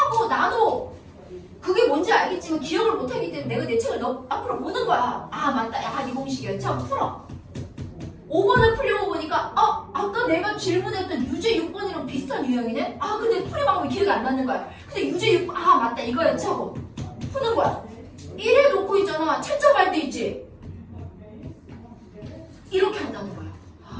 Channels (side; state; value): both; identical; correlation 1.00